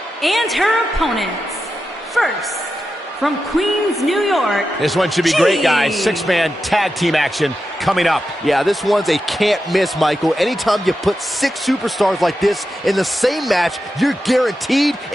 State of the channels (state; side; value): normal; both; correlation 0.90